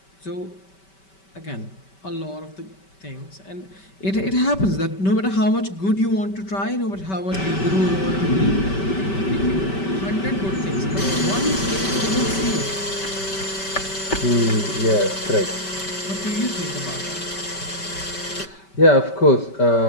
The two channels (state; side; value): late; right; 5.2 ms